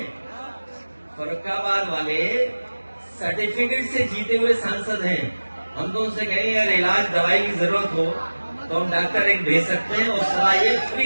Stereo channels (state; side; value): inverted; both; correlation -1.00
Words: फरक्काबाद वाले सर्टिफिकेट से जीते हुए सांसद हैं। हम तो उनसे कहेंगे अगर इलाज दवाई की जरूरत हो तो हम डॉक्टर एक भेज सकते हैं और सलाह ये